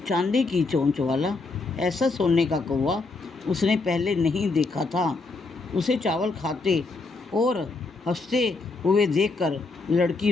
चांदी की चोंच वाला, ऐसा सोने का कौवा उसने पहले नहीं देखा था। उसे चावल खाते और हंसते हुए देखकर लड़की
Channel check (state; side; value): quieter; right; 3.7 dB